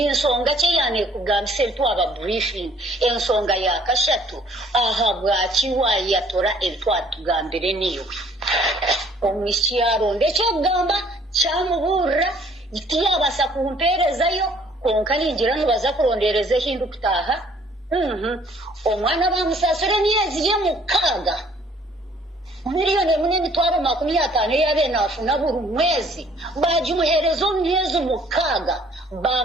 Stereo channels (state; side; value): normal; both; correlation 0.59